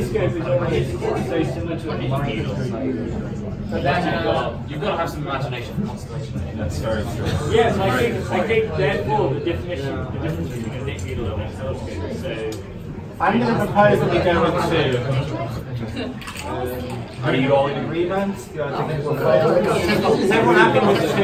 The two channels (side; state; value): both; identical; correlation 1.00